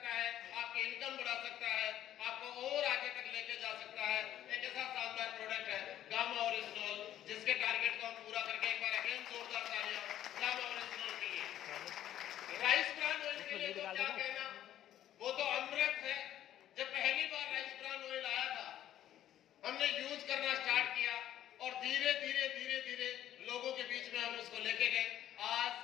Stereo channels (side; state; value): right; quieter; 11.9 dB